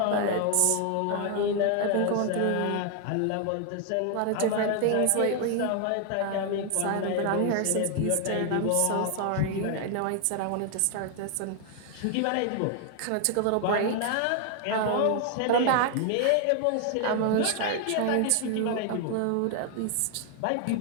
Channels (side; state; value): both; different; correlation 0.00